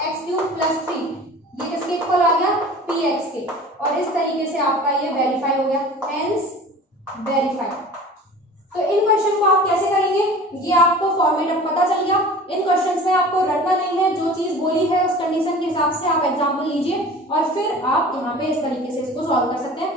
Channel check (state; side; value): normal; both; correlation 0.41